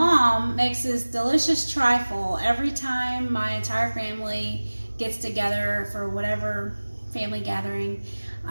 makes this delicious trifle every time my entire family gets together for whatever family gathering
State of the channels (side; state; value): both; inverted; correlation -1.00